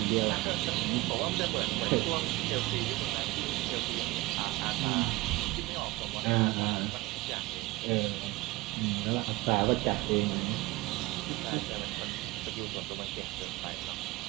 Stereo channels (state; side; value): quieter; left; 21.1 dB